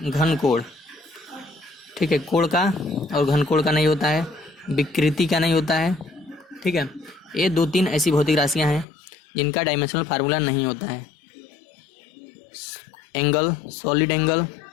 घन कोण। ठीक है, कोण का और घन कोण का नहीं होता है, विकृति का नहीं होता है। ठीक है, ये 2-3 ऐसी भौतिक राशियाँ हैं जिनका डायमेंशनल फार्मूला नहीं होता है। एंगल, सॉलिड एंगल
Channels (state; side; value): drops out; right; at 8.8 s